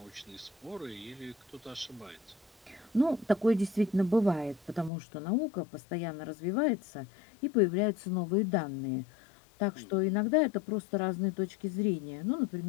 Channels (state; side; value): drops out; right; at 4.9 s